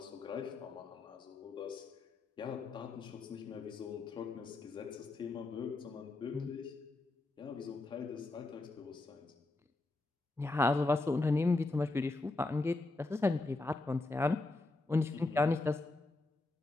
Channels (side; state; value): right; quieter; 3.1 dB